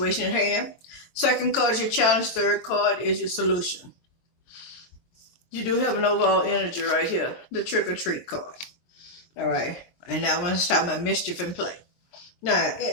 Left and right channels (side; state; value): right; late; 23 ms